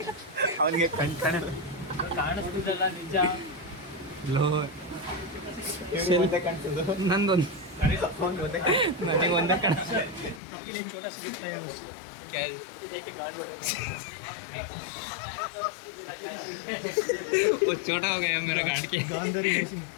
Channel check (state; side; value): drops out; right; at 10.4 s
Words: ಅವನಿಗೆ ಕಾಣಿಸ್ತಿದ್ದಲ್ಲ ನಿಜ. ಲೋ ನಂದೊಂದು ನನಗೆ ಒಂದೇ ಕಾಣ. छोटा सा दिखता है वो छोटा हो गया मेरा गाड़ के.